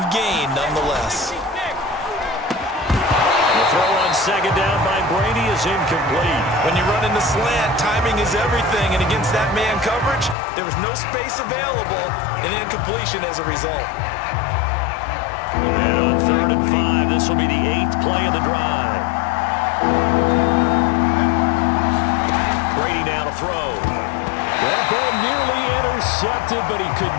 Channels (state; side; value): drops out; right; at 10.4 s